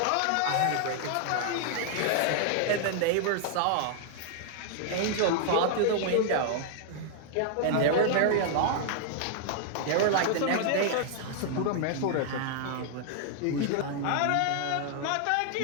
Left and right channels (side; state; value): both; different; correlation 0.00